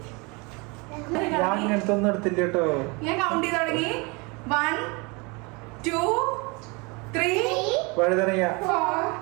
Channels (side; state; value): left; quieter; 28.4 dB